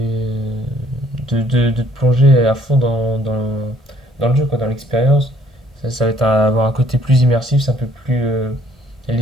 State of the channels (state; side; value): normal; both; correlation 0.62